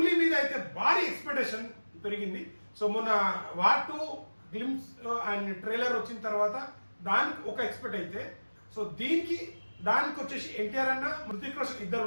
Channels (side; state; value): both; inverted; correlation -1.00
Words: మీద అయితే భారీ ఎక్స్పెక్టేషన్ పెరిగింది. సో మొన్న వాట్ 2 గ్లిమ్స్ అండ్ ట్రైలర్ వచ్చిన తర్వాత దానికి ఒక ఎక్స్పెక్ట్ అయితే, సో దానికి వచ్చేసి ఎన్టీఆర్ అన్న, హృతిక్ రోషన్ ఇద్దరు